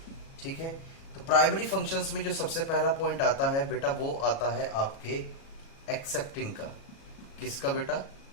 ठीक है। तो प्राइमरी फंक्शंस में जो सबसे पहला पॉइंट आता है बेटा, वो आता है आपके एक्सेप्टिंग का। किसका बेटा?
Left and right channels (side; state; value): right; late; 37 ms